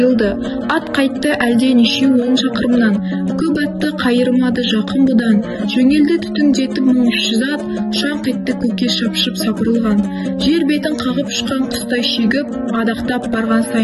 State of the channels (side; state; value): both; identical; correlation 1.00